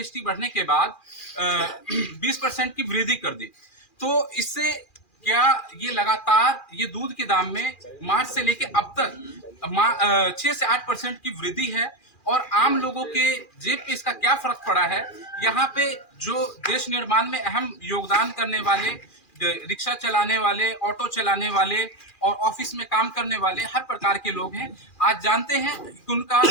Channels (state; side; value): late; right; 2.4 ms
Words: बढ़ने के बाद 20% की वृद्धि कर दी। तो इससे क्या ये लगातार ये दूध के दाम में मार्च से लेके अब तक 6 से 8% की वृद्धि है। और आम लोगों के जेब पे इसका क्या फर्क पड़ा है, यहाँ पे जो देश निर्माण में अहम योगदान करने वाले, रिक्शा चलाने वाले, ऑटो चलाने वाले और ऑफिस में काम करने वाले हर प्रकार के लोग हैं, आज जानते हैं कि उनका